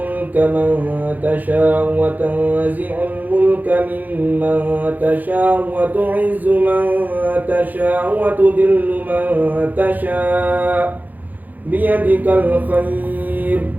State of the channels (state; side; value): late; left; 0.082 ms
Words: man tasha'u wa tanzi'ul mulka mimman tasha'u wa tu'izzu man tasha'u wa tudhillu man tasha'u biyadikal khair,